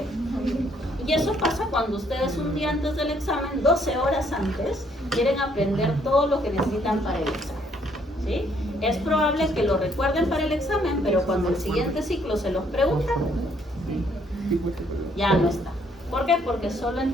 Y eso pasa cuando ustedes un día antes del examen, 12 horas antes, quieren aprender todo lo que necesitan para el examen. ¿Sí? Es probable que lo recuerden para el examen, pero cuando el siguiente ciclo se los preguntan, ya no está. ¿Por qué? Porque solo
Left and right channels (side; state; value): both; normal; correlation 0.67